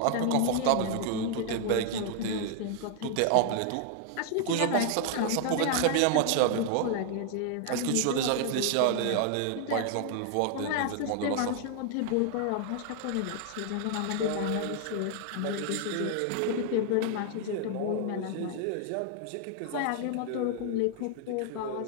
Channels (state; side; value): different; both; correlation 0.00